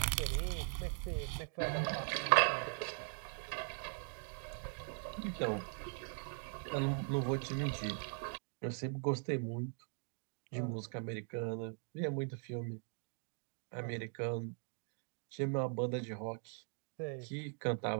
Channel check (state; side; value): silent; left; 51 dB below the other